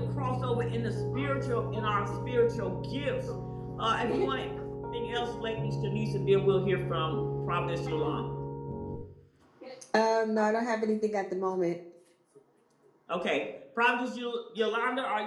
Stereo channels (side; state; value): both; identical; correlation 1.00